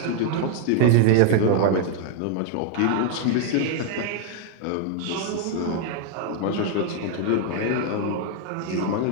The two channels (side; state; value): both; different; correlation 0.00